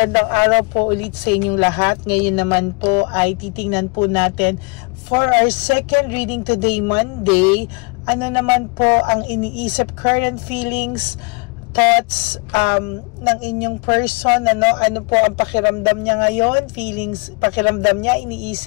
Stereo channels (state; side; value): quieter; right; 31.5 dB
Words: araw po ulit sa inyong lahat. Ngayon naman po ay titingnan po natin for our second reading today, Monday. Ano naman po ang iniisip, current feelings, thoughts ng inyong person, ano po ang pakiramdam niya ngayon, feelings, pakiramdam niya,